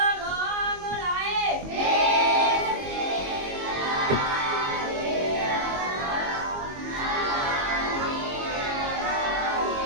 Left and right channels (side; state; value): left; late; 22 ms